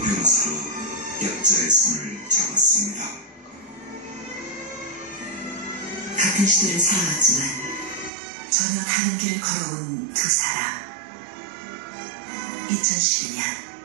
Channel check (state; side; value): drops out; left; at 8.1 s